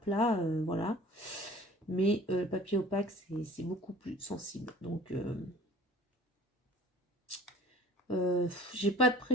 voilà. Mais le papier opaque, c'est beaucoup plus sensible. Donc, j'ai pas de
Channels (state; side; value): normal; both; correlation 0.47